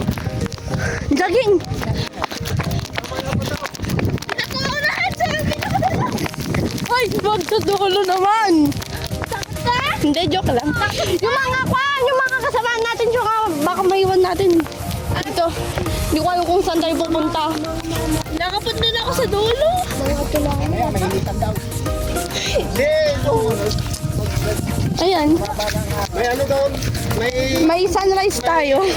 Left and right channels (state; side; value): identical; both; correlation 1.00